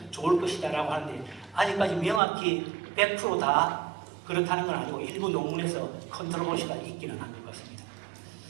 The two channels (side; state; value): left; drops out; at 2.2 s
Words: 좋을 것이다라고 하는데 아직까지 명확히 100%다 그렇다는 건 아니고 일부 논문에서 컨트롤시가 있기는 한 것 같습니다.